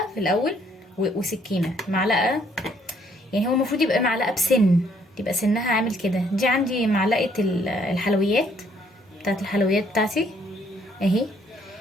في الاول، وسكينه معلقه. يعني هو المفروض يبقى معلقه بسن، تبقى سنها عامل كده. دي عندي معلقه الحلويات، بتاعت الحلويات بتاعتي اهي.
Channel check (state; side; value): normal; both; correlation 0.67